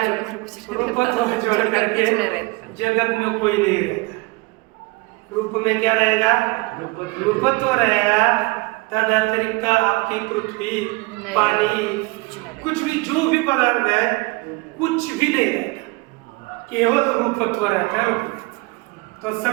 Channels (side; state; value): left; quieter; 25.2 dB